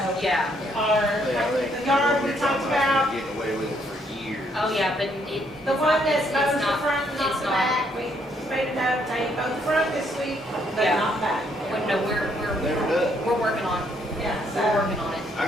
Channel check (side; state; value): both; normal; correlation 0.70